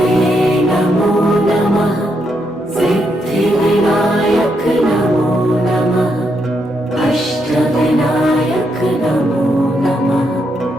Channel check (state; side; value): normal; both; correlation 0.79